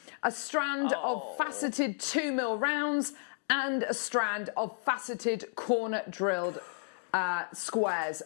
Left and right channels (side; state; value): right; silent; digital silence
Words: a strand of faceted 2mm rounds, and a strand of faceted corner drilled squares